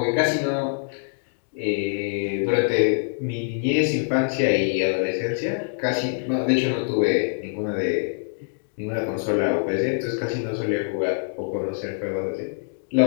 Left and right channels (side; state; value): right; silent; digital silence